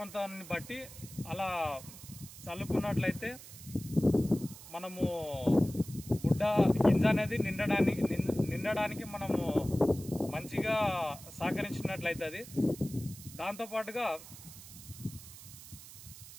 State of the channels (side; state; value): right; noise; hiss, 16 dB below the sound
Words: బట్టి అలా చల్లుకున్నట్లయితే మనము బుడ్డ గింజ అనేది నిండడానికి మనము మంచిగా సహకరించినట్లయితుంది. దాంతోపాటుగా